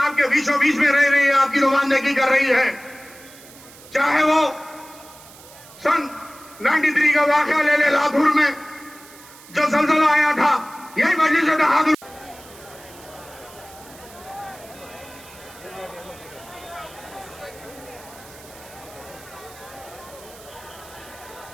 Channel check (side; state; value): right; noise; hiss, 21 dB below the sound